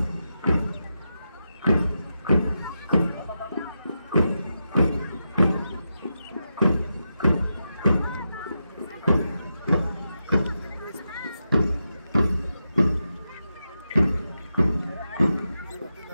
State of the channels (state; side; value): inverted; both; correlation -0.88